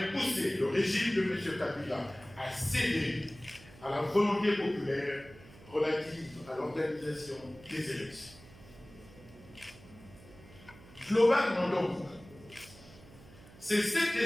poussé le régime de M. Kabila à céder à la volonté populaire relative à l'organisation des élections. Globalement donc, c'est cet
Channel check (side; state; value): right; noise; hum, 21 dB below the sound